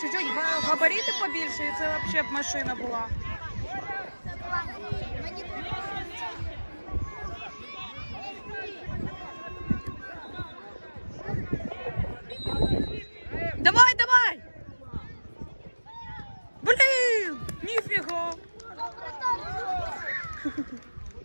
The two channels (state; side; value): inverted; both; correlation -1.00